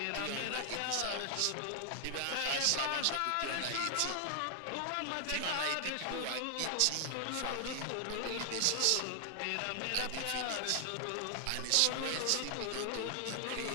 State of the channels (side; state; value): both; different; correlation 0.00